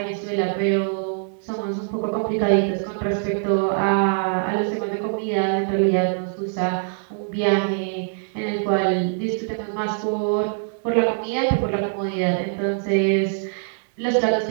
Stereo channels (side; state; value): left; silent; digital silence